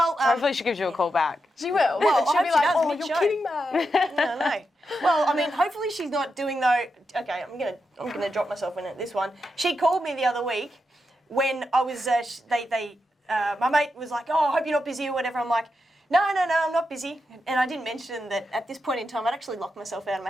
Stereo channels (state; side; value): normal; both; correlation 0.86